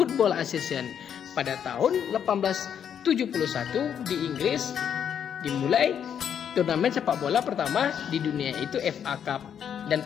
Association. Pada tahun 1871 di Inggris dimulai turnamen sepak bola pertama di dunia, itu FA Cup, dan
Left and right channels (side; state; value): right; quieter; 8.5 dB